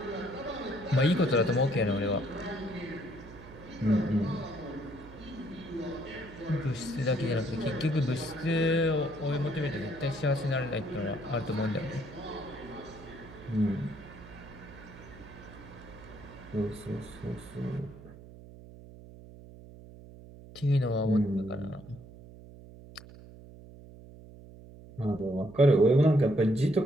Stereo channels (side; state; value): right; noise; hum, 18 dB below the sound